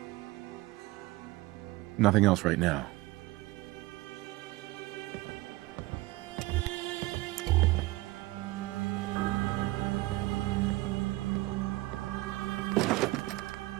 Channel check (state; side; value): quieter; left; 19.8 dB